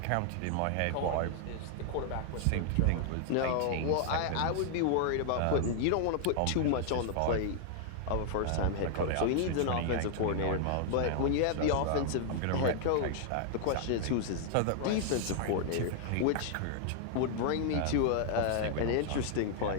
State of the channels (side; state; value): both; different; correlation 0.00